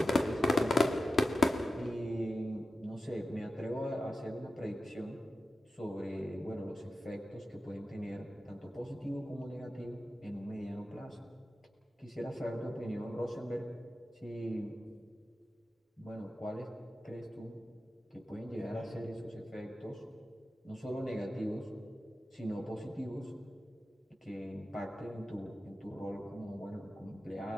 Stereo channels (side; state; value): both; normal; correlation 0.92